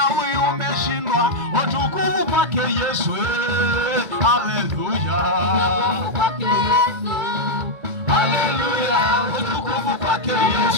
umeshindwa, utukufu kwake Yesu. Haleluya. Haleluya. Utukufu kwake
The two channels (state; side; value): late; left; 2.0 ms